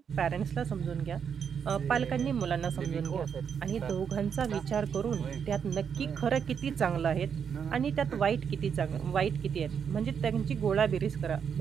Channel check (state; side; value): quieter; left; 7.2 dB